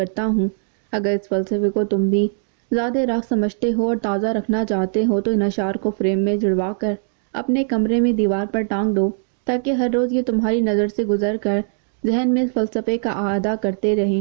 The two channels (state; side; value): silent; left; digital silence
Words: ہوں۔ اگر اس فلسفے کو تم بھی زیادہ راہ سمجھتے ہو اور تازہ رکھنا چاہتے ہو تو ان اشعار کو فریم میں جڑوا کر اپنے کمرے میں دیوار پر ٹانگ دو، تاکہ ہر روز یہ تمہاری نظر سے گزر کر ذہن میں اس فلسفے کا اعادہ کرتے